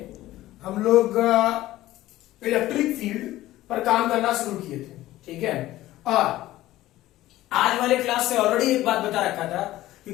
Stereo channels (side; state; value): right; quieter; 15.7 dB